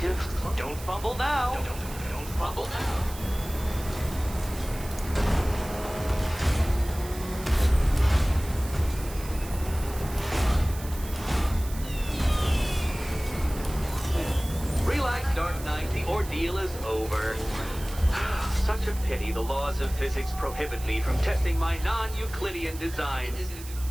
Don't fumble now. Don't fumble now. Relax, Dark Knight. The ordeal is over. Such a pity the laws of physics prohibit me from testing my non-Euclidean designs.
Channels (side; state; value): right; noise; hiss, 15 dB below the sound